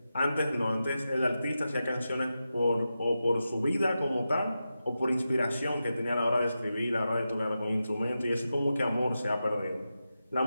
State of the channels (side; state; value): both; inverted; correlation -0.91